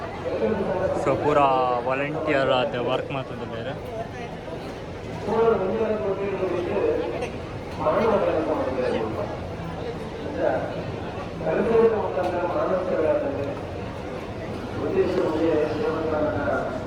ಸೊ ಪೂರಾ ವಾಲಂಟಿಯರ್ ಆದ ವರ್ಕ್ ಮಾಡ್ತದೆ ಬೇರೆ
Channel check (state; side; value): identical; both; correlation 1.00